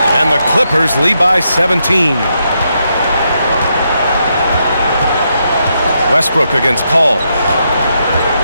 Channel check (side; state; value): both; inverted; correlation -0.80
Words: And the Clippers lead by 17. Westbrook against Paul.